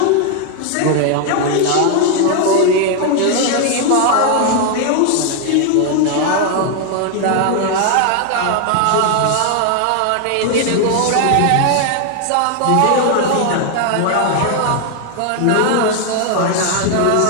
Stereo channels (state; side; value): different; both; correlation 0.00